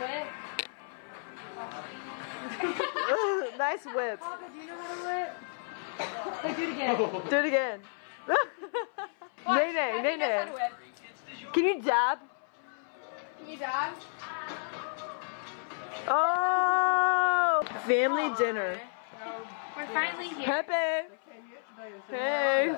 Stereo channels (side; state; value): right; silent; 57 dB below the other